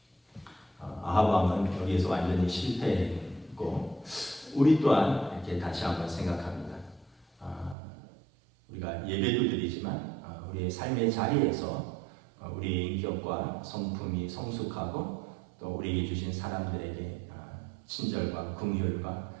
아합 왕은 여기에서 완전히 실패했고 우리 또한 이렇게 다시 한번 생각합니다. 우리가 예배도 드리지만 우리의 삶의 자리에서 우리의 인격과 성품이 성숙하고 또 우리에게 주신 사람들에게 친절과 긍휼과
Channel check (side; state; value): left; drops out; at 7.8 s